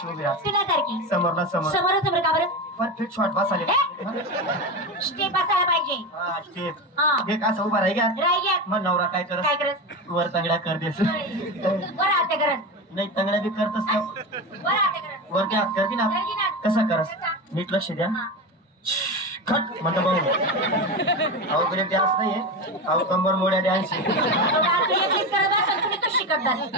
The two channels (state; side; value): normal; both; correlation 0.21